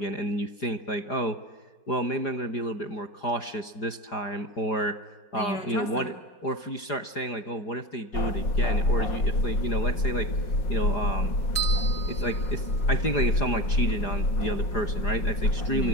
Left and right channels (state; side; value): late; right; 4.9 ms